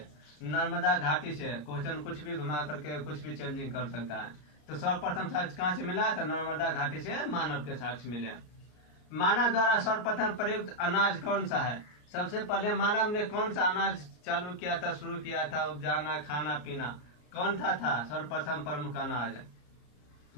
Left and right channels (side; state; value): right; late; 33 ms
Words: नर्मदा घाटी से। क्वेश्चन कुछ भी घुमा करके कुछ भी चेंजिंग कर सकता है। तो सर्वप्रथम साक्ष्य कहाँ से मिला? तो नर्मदा घाटी से मानव के साक्ष्य मिले। मानव द्वारा सर्वप्रथम प्रयुक्त अनाज कौन सा है? सबसे पहले मानव ने कौन सा अनाज चालू किया था, शुरू किया था उपजाना, खाना पीना? कौन था सर्वप्रथम प्रमुख अनाज?